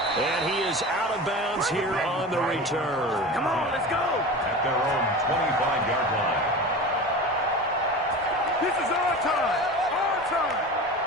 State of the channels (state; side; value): normal; both; correlation 0.31